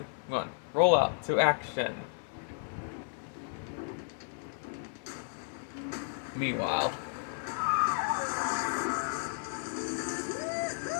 1. Roll out to action. Meanwhile.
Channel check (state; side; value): silent; right; digital silence